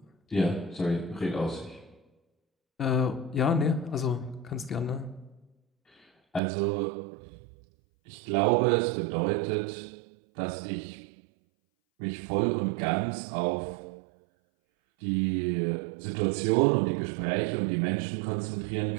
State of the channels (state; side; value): drops out; left; at 6.4 s